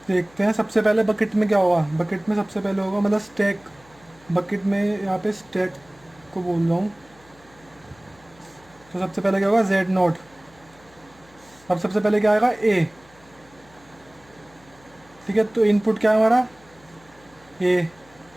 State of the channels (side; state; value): left; noise; hum, 27 dB below the sound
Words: देखते हैं सबसे पहले बकेट में क्या होगा। बकेट में सबसे पहले होगा मतलब स्टैक, बकेट में यहाँ पे स्टैक को बोल रहा हूँ। तो सबसे पहले क्या होगा, Z0। अब सबसे पहले क्या आएगा, A, ठीक है। तो इनपुट क्या है हमारा, A,